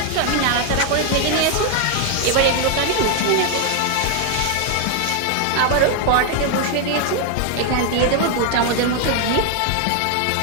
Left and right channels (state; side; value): different; both; correlation 0.00